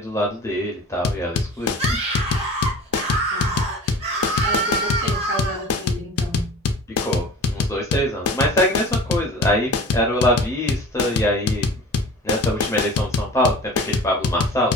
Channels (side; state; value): both; normal; correlation 0.40